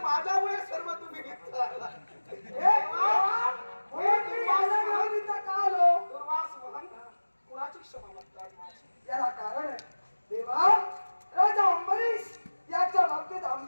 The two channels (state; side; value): inverted; both; correlation -1.00